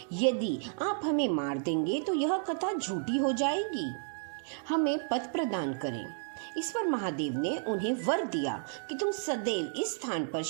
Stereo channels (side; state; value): left; silent; digital silence